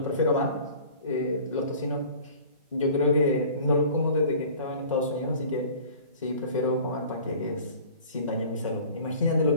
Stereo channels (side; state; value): both; inverted; correlation -0.45